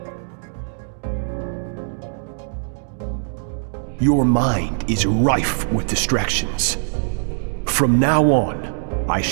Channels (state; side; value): silent; left; digital silence